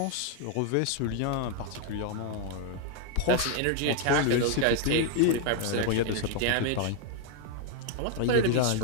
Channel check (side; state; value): both; different; correlation 0.00